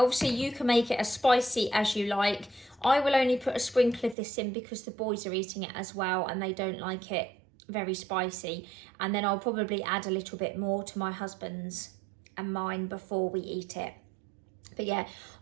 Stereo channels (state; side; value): drops out; left; at 4.2 s